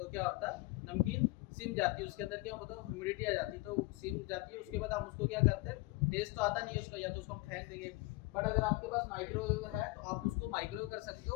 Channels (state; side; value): quieter; right; 22.4 dB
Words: क्या होता है, नमकीन सिम जाती है, उसके अंदर क्या होता है ह्यूमिडिटी आ जाती है, तो सिम जाती है। उसके बाद हम उसको क्या करते हैं, टेस्ट तो आता नहीं है उसका, या तो उसको हम फेंक देंगे। बट अगर आपके पास माइक्रोवेव है तो आप उसको माइक्रोवेव कर सकते